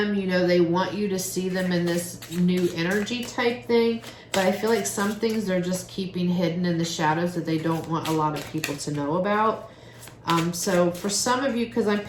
you know, they want you to see them in this new energy type thing. But I feel like some things they're just keeping hidden in the shadows that they don't want a lot of people to know about. So for some of you, because I'm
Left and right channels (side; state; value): both; identical; correlation 1.00